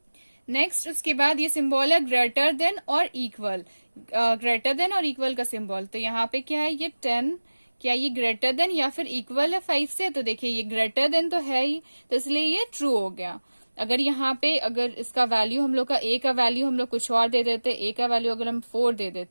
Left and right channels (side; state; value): both; inverted; correlation -1.00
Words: नेक्स्ट उसके बाद ये सिंबल है ग्रेटर देन और इक्वल, ग्रेटर देन और इक्वल का सिंबल, तो यहाँ पे क्या है ये 10, क्या ये ग्रेटर देन या फिर इक्वल है 5 से, तो देखिए ये ग्रेटर देन तो है ही, तो इसलिए ये ट्रू हो गया। अगर यहाँ पे अगर इसका वैल्यू हम लोग का ए का वैल्यू हम लोग कुछ और दे देते, ए का वैल्यू अगर हम 4 दे